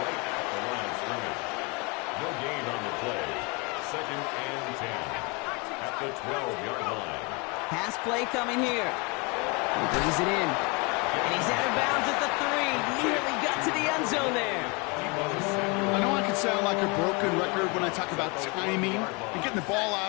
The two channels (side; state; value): right; quieter; 29.8 dB